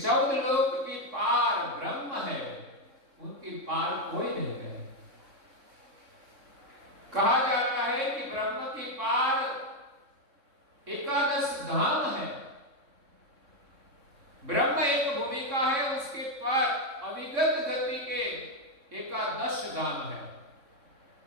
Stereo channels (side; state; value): left; late; 3.6 ms